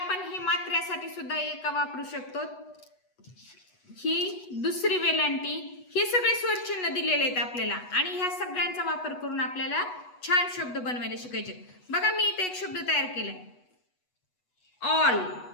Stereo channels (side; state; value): right; late; 8.1 ms